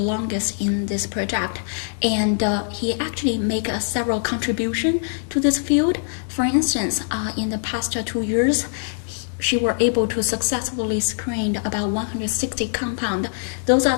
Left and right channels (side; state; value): right; silent; digital silence